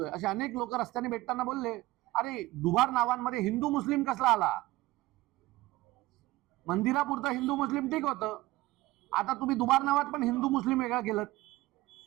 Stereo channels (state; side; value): quieter; left; 18.6 dB